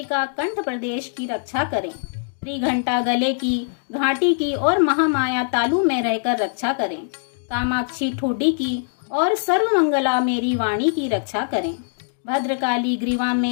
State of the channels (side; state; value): right; silent; digital silence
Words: कंठ प्रदेश की रक्षा करें। त्रिघंटा गले की, घाटी की और महामाया तालु में रहकर रक्षा करें। कामाक्षी ठोडी की और सर्वमंगला मेरी वाणी की रक्षा करें। भद्रकाली ग्रीवा